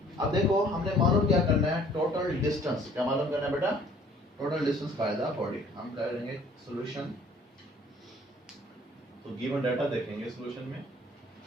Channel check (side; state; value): both; normal; correlation 0.56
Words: अब देखो हमने मालूम क्या करना है? Total distance. क्या मालूम करना है बेटा? Total distance by the body. हम करेंगे सॉल्यूशन, तो गिवन डाटा देखेंगे सॉल्यूशन में।